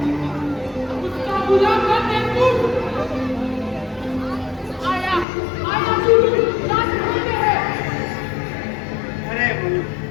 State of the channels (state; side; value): drops out; right; at 5.2 s